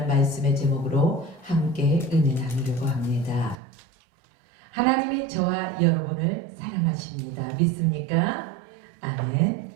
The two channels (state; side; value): drops out; left; at 3.6 s